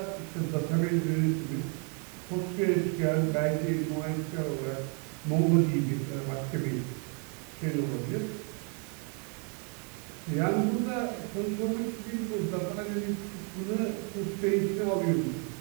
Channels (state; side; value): quieter; left; 38.6 dB